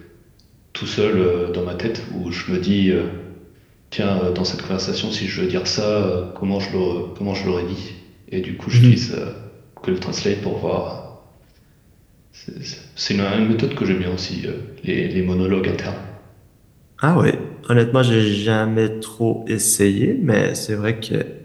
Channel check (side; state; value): both; identical; correlation 1.00